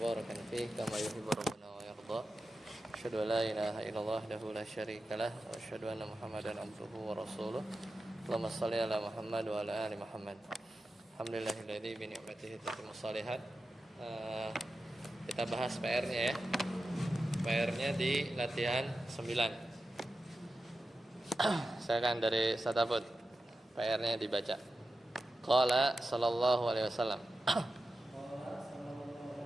fihi kama yuhibbu rabbuna wa yarda. Asyhadu an la ilaha illallah wahdahu la syarikalah wa asyhadu anna Muhammadan abduhu wa rasuluh. Allahumma shalli ala Muhammad wa ala ali Muhammad. Alhamdulillahilladzi bi ni'matihi tatimmu shalihat. Kita bahas PR-nya ya. PR-nya di latihan 9. Silakan dari Satafut. PR-nya dibaca. Qala sallallahu alaihi wasallam.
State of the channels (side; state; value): both; normal; correlation 0.92